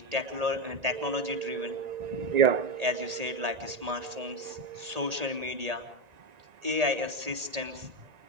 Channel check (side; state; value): left; late; 1.8 ms